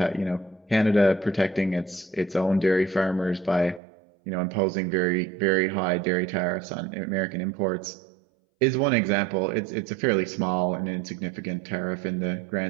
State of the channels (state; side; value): drops out; left; at 3.8 s